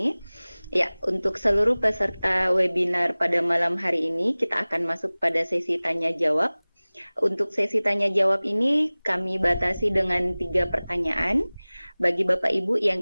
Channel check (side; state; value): both; inverted; correlation -0.99